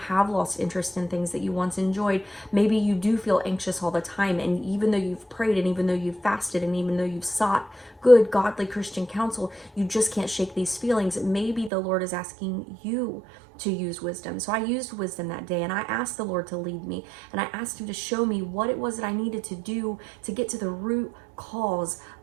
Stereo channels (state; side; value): drops out; left; at 11.7 s